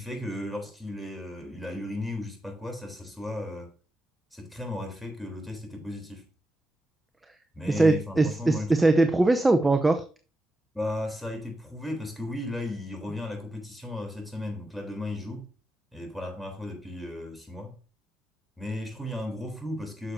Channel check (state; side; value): normal; both; correlation 0.89